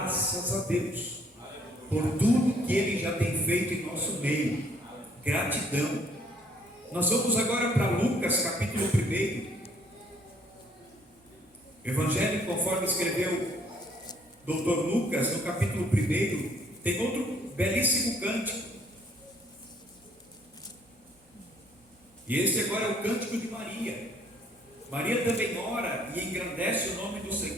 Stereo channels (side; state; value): both; normal; correlation 0.63